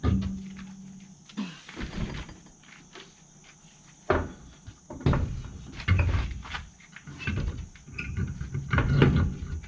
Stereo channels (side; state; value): both; identical; correlation 1.00